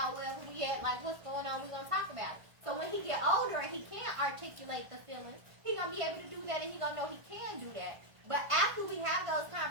wherever we at, like, what's going on, we're going to talk about it. So when he get older and he can't articulate the feelings, he going to be able to do that, and he going to know he can do that. But after we have those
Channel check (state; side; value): late; left; 1.5 ms